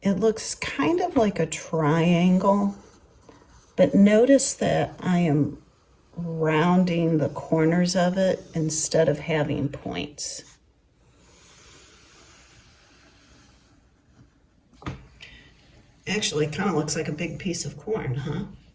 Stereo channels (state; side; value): identical; both; correlation 1.00